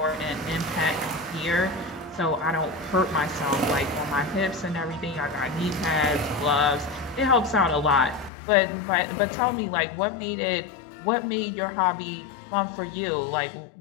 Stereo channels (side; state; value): right; drops out; at 8.3 s